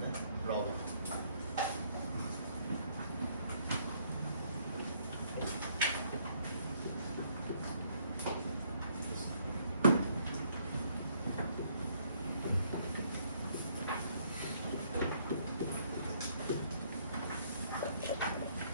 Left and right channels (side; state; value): both; inverted; correlation -0.67